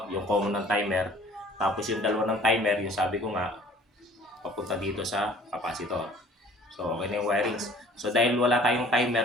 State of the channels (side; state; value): both; normal; correlation 0.52